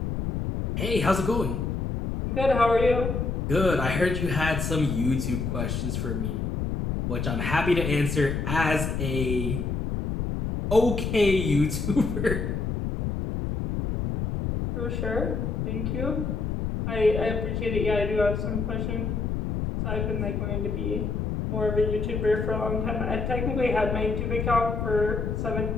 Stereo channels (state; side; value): noise; left; rumble, 1 dB below the sound